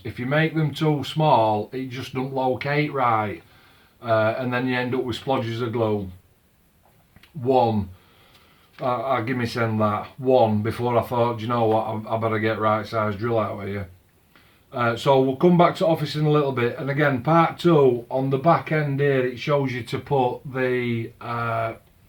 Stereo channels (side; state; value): both; identical; correlation 1.00